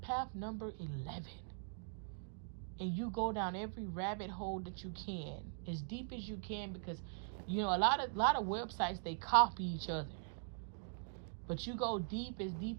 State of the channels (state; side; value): silent; left; digital silence